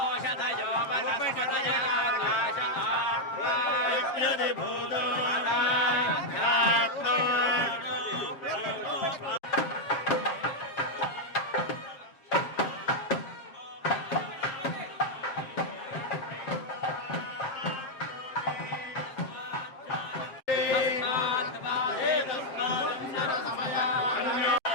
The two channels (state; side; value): late; right; 7.5 ms